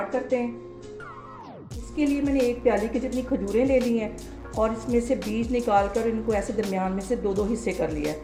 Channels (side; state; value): both; identical; correlation 1.00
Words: करते हैं। इसके लिए मैंने एक प्याली की जितनी खजूरें ले ली हैं और इसमें से बीज निकाल कर इनको ऐसे दरमियान में से दो दो हिस्से कर लिया